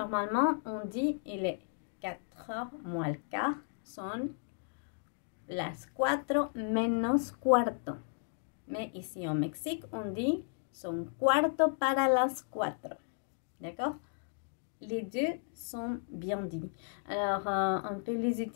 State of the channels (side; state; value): right; silent; digital silence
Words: on dit il est 4h moins le quart. Son las 4 menos cuarto. Mais ici au Mexique, on dit son cuarto para las 4. D'accord? Les deux sont bien dits. Alors, on peut les